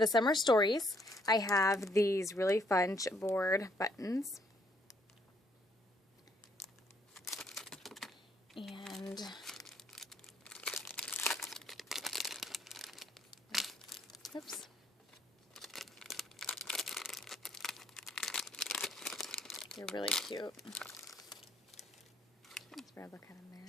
Summer Stories, I have these really fun chipboard buttons. And oops. They're really cute. Let's grab a look at them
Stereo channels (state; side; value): normal; both; correlation 0.68